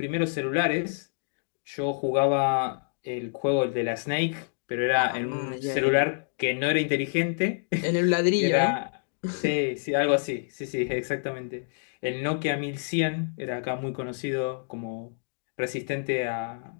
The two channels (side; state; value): right; silent; digital silence